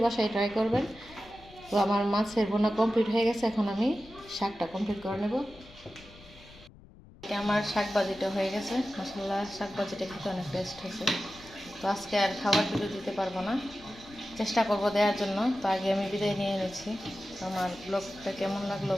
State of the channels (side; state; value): left; noise; rumble, 22 dB below the sound